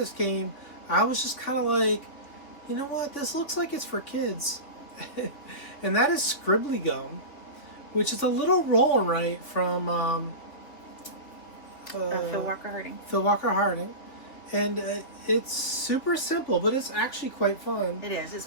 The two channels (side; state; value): right; late; 3.7 ms